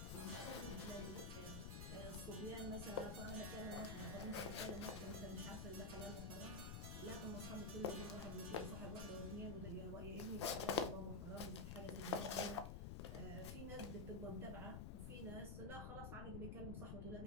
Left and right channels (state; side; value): noise; left; rumble, 3 dB below the sound